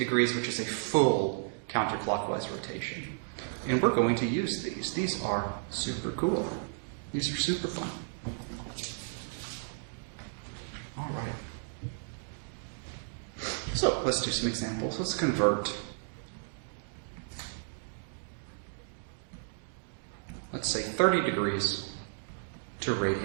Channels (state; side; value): silent; left; digital silence